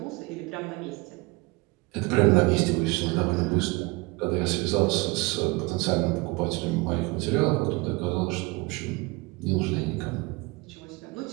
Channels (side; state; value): left; quieter; 24.5 dB